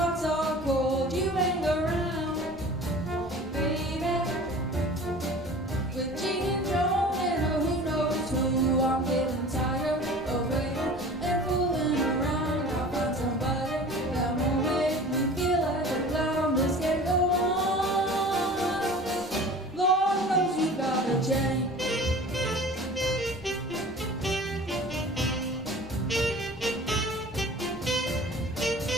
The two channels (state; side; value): normal; both; correlation 0.42